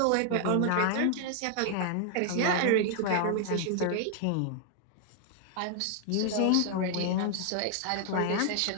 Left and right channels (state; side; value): different; both; correlation 0.00